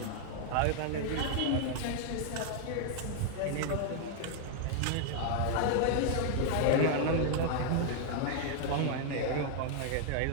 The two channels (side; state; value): both; different; correlation 0.00